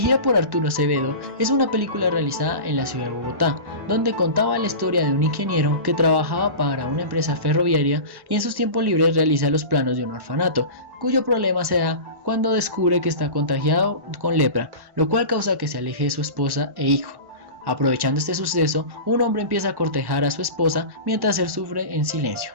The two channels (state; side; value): late; left; 1.1 ms